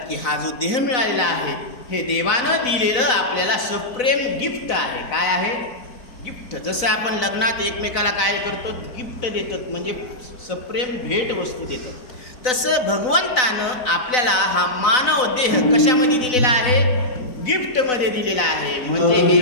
की हा जो देह मिळालेला आहे हे देवानं दिलेलं आपल्याला सप्रेम गिफ्ट आहे. काय आहे? गिफ्ट. जसं आपण लग्नात एकमेकाला काय करतो? गिफ्ट देतात, म्हणजे सप्रेम भेट वस्तू देतात. तसं भगवंतानं आपल्याला हा मानव देह कशामध्ये दिलेला आहे? गिफ्ट मध्ये दिलेला आहे. म्हणजे हे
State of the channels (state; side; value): late; right; 4.0 ms